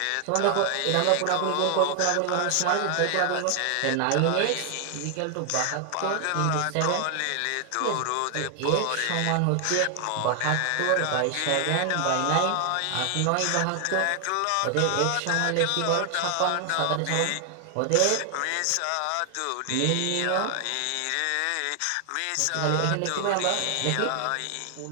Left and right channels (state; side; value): different; both; correlation 0.00